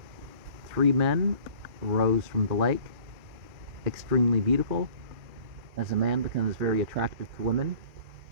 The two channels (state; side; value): late; left; 2.4 ms